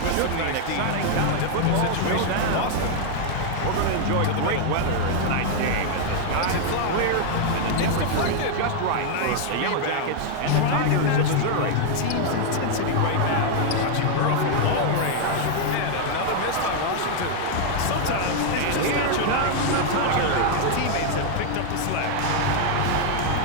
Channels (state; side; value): different; both; correlation 0.00